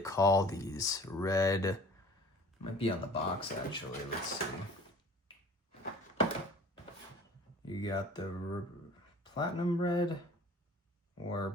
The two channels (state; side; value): normal; both; correlation 0.47